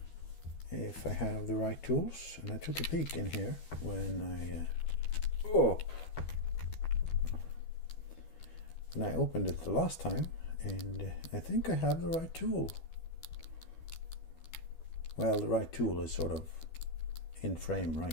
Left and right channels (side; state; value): right; late; 12 ms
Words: If I have the right tools. And I took a peek in here when I opened it the last time, and I think I have the right tool. Well, the right tool is sort of in frame